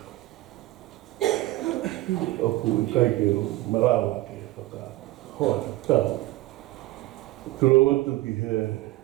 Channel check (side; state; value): left; quieter; 17.8 dB